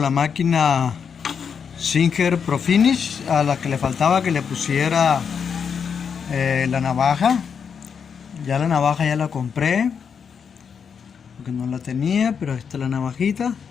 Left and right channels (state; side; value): quieter; right; 6.7 dB